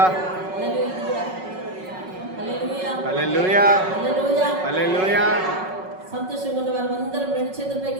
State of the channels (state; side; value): late; left; 5.4 ms